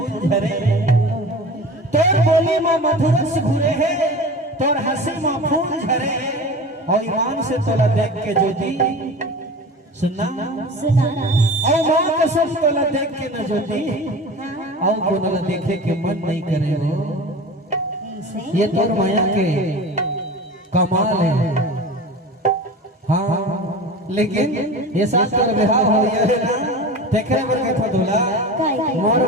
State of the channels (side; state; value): both; normal; correlation 0.34